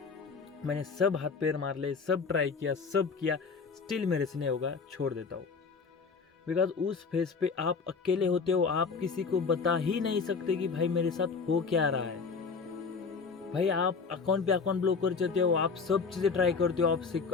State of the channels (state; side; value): quieter; right; 5.1 dB